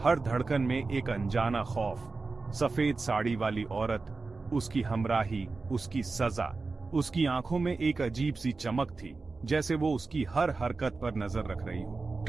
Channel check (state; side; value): quieter; left; 3.9 dB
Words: धड़कन में एक अनजाना खौफ। सफेद साड़ी वाली औरत, उसकी हमराही, उसकी सजा। उसकी आंखों में एक अजीब सी चमक थी, जैसे वो उसकी हर हरकत पर नजर रख रही हो।